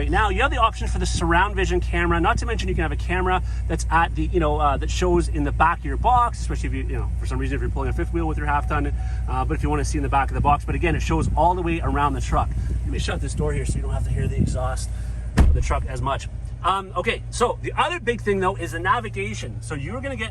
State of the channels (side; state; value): both; identical; correlation 1.00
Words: now, you have the option for the surround vision camera. Not to mention you can have a camera that's at the, that shows in the back of your box, especially if you, for some reason, if you're pulling a fifth wheel with your half ton, but if you want to see in the back of the box. But again, it shows all the way around the truck. Let me shut this door here so you don't have to hear the exhaust of the truck as much. Okay, so the other big thing though is the navigation. So you're going to